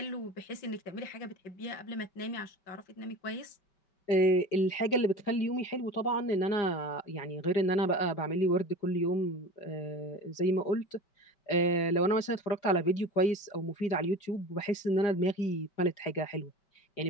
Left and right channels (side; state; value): right; late; 4.9 ms